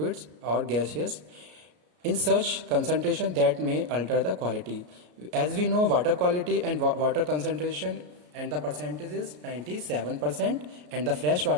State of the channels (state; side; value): late; left; 33 ms